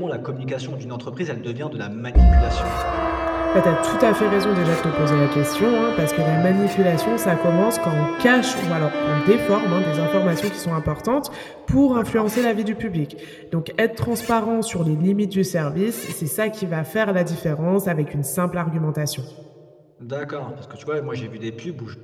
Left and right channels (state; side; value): identical; both; correlation 1.00